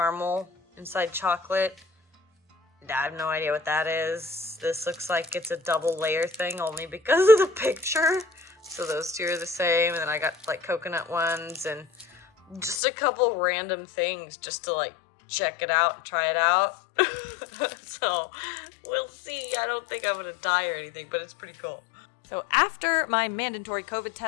inside chocolate. I have no idea what that is. This looks like it's a double layer thing only because of the picture. So those two are the same. And then I got like coconut ones and just a couple random things just to like check it out and try it out. So we'll see. I don't think I'm gonna die or anything, but it's pretty cool. So after my mandatory COVID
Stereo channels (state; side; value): drops out; right; at 12.8 s